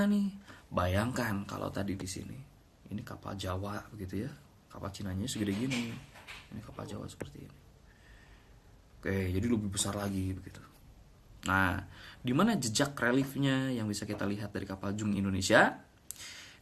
nih. Bayangkan kalau tadi di sini. Ini kapal Jawa begitu ya. Kapal Cinanya segede gini. Ini kapal Jawa seperti ini. Oke, jadi lebih besar lagi begitu. Nah, di mana jejak reliefnya yang bisa kita lihat dari kapal Jung Indonesia?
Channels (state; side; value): identical; both; correlation 1.00